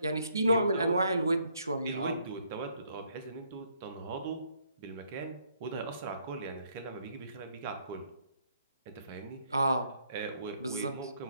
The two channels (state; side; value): inverted; both; correlation -0.69